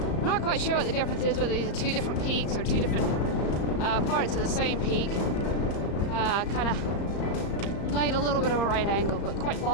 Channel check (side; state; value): right; late; 35 ms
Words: not quite sure what the difference is, whether these are 2 different peaks or 2 different parts of the same peak. Kind of laid a little bit of a right angle, but quite